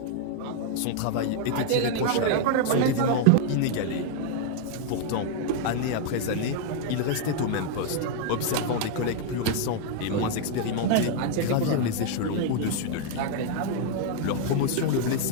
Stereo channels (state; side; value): different; both; correlation 0.00